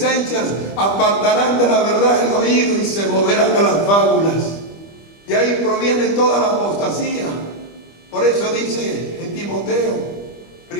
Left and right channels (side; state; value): right; late; 25 ms